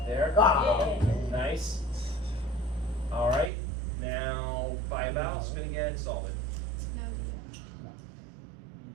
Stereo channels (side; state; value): left; drops out; at 3.5 s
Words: there. Ah. Nice. All right. Now buy a vowel, spin again, solve it.